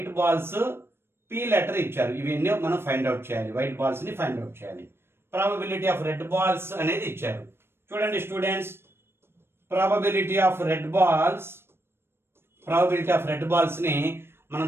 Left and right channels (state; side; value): late; left; 0.12 ms